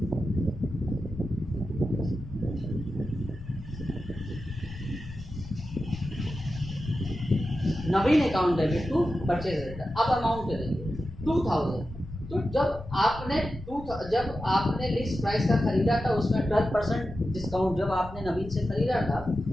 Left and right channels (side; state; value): left; noise; rumble, 13 dB below the sound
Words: Naveen account debit to purchase return. अब अमाउंट देंगे 2000। तो जब आपने लिस्ट प्राइस का खरीदा था उसमें 12% डिस्काउंट, जब आपने नवीन से खरीदा था